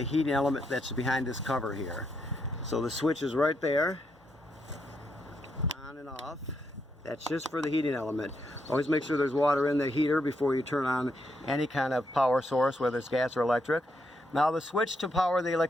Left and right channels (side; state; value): both; normal; correlation 0.79